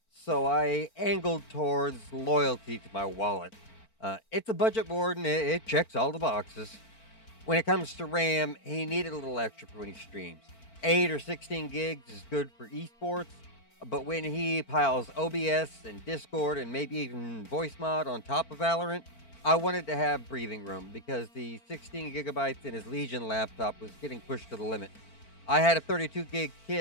so I angled towards loyalty to my wallet. It's a budget board and it checks all the boxes. When it comes to RAM, he needed a little extra for when he streams. 8 or 16 gigs is good for esports, but when he piles OBS and Discord and maybe even voice mod on top of Valorant, I wanted to have breathing room because the 16 gigabytes in his Legion laptop was getting pushed to the limit. I had a 32 gig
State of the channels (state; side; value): late; right; 4.4 ms